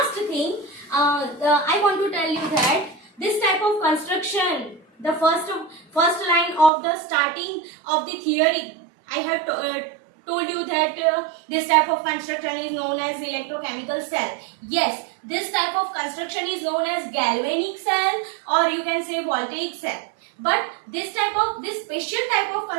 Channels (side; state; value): left; drops out; at 6.7 s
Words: thing, I want to tell you that this type of construction, the first line of the starting of the theory, I have told you that this type of construction is known as electrochemical cell. Yes, this type of construction is known as galvanic cell or you can say voltaic cell. But this special type of